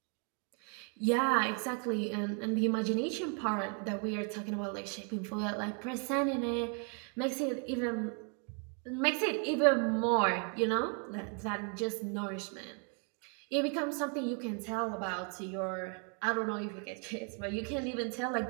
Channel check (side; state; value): left; quieter; 38.9 dB